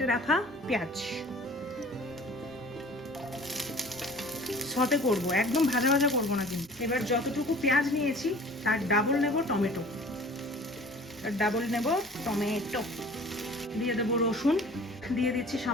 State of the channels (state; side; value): normal; both; correlation 0.46